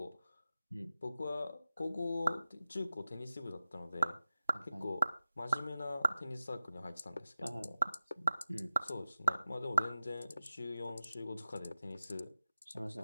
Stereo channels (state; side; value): inverted; both; correlation -0.95